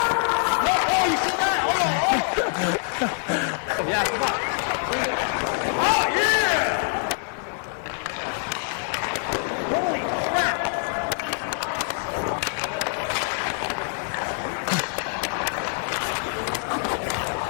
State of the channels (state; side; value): silent; right; 57 dB below the other